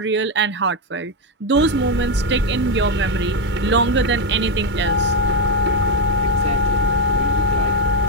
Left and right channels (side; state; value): both; normal; correlation 0.05